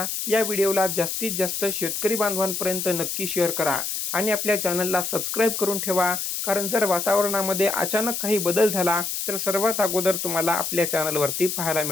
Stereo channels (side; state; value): left; noise; hiss, 3 dB below the sound